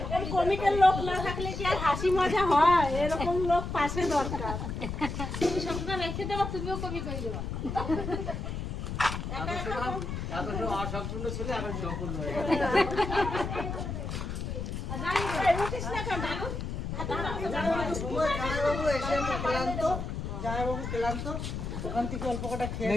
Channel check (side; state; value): left; noise; rumble, 4 dB below the sound